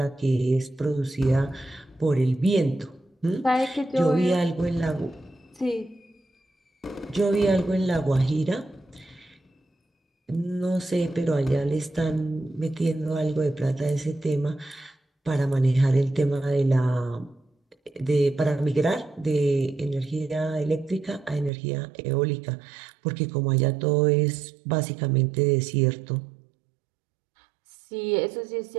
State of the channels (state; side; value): drops out; left; at 21.5 s